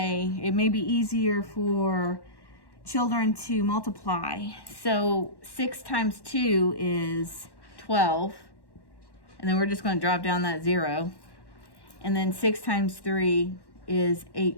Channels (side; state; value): right; late; 1.1 ms